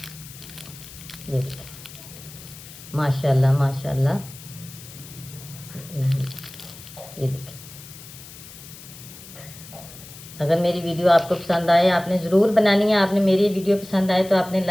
देखिए, माशाल्लाह माशाल्लाह। ये देखिए, अगर मेरी वीडियो आपको पसंद आए, आपने ज़रूर बनानी है। आपने मेरी वीडियो पसंद आए तो आपने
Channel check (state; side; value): noise; left; hiss, 17 dB below the sound